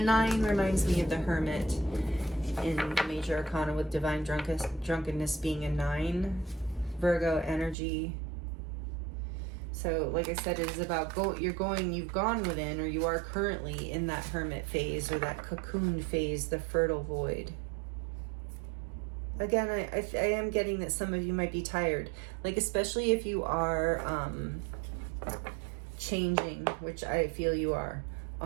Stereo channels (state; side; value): drops out; left; at 7.8 s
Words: reminds me of the Hermit in the Major Arcana, with divine drunkenness being a 9. Virgo energy. So like I said, it is about you've gone within, or you are currently in that hermit phase, or that cocoon phase, the fertile void. Again, I am getting that some of you might be tired, like especially if you are changing, which I feel you are,